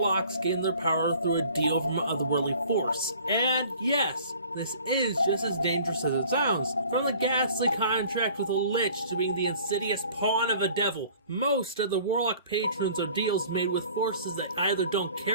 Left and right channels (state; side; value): inverted; both; correlation -0.50